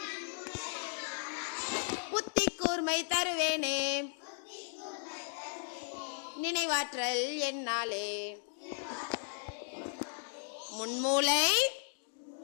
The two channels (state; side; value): silent; right; digital silence